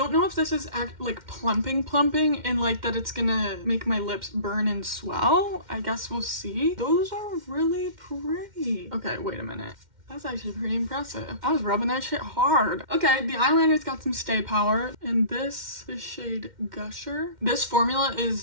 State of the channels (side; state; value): left; late; 2.1 ms